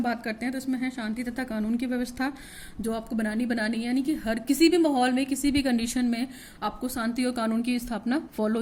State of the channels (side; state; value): both; identical; correlation 1.00